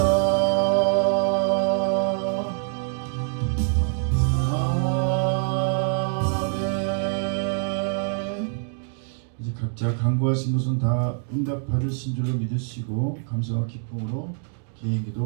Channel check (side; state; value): left; silent; 62 dB below the other